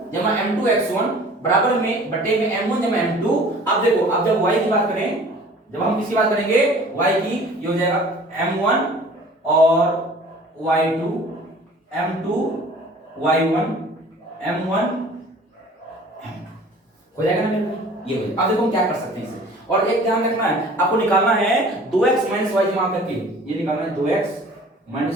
जमा m2 x1 बराबर में बटे में m1 जमा m2। अब देखो अब जब y की बात करें, जब हम किसकी बात करेंगे, y की, ये हो जाएगा m1 और y2 m2 y1 m1 हो जाएगा ना मेरे भाई, ये हो जाएगा। अब देखो हम क्या कर सकते हैं इसे, और एक ध्यान रखना है, आपको निकालना है 2x - y जमा करके, ये निकालना है 2x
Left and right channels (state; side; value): normal; both; correlation 0.48